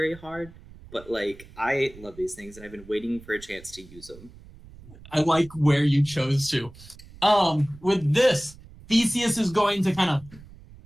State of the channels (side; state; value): right; noise; rumble, 20 dB below the sound